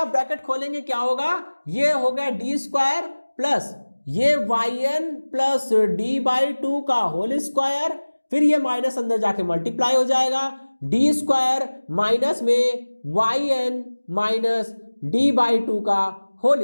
ब्रैकेट खोलेंगे क्या होगा, ये हो गया डी स्क्वायर प्लस ये YN प्लस D/2 का होल स्क्वायर, फिर ये माइनस अंदर जाके मल्टीप्लाई हो जाएगा, डी स्क्वायर माइनस में YN माइनस D/2 का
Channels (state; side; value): inverted; both; correlation -1.00